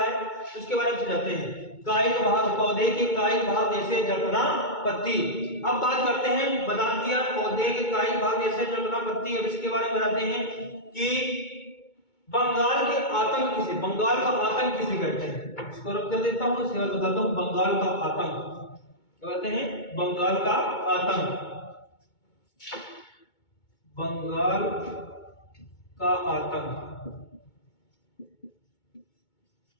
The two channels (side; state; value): right; late; 2.2 ms